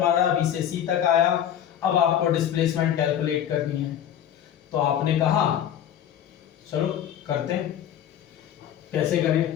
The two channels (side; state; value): right; quieter; 10.1 dB